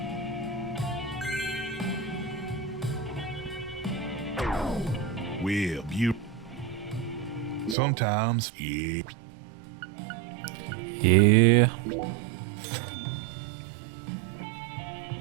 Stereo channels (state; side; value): drops out; left; at 7.8 s